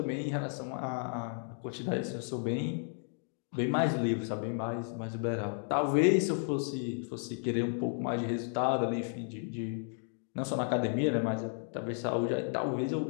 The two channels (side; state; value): right; silent; 56 dB below the other